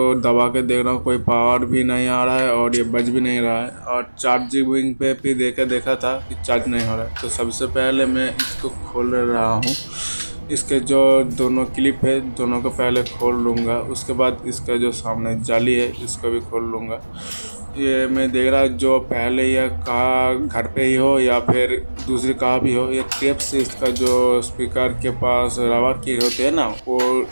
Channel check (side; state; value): both; inverted; correlation -1.00